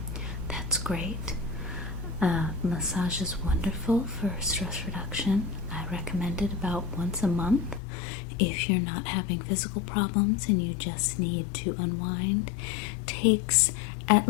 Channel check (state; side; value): drops out; right; at 7.8 s